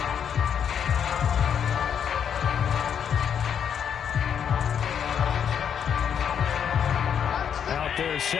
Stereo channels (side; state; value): right; quieter; 8.1 dB